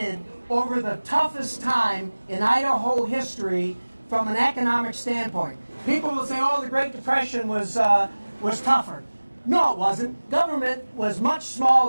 over the toughest time in Idaho history from an economic standpoint. People will say, oh, the Great Depression was tougher. No, it wasn't. Government was much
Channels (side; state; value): both; inverted; correlation -1.00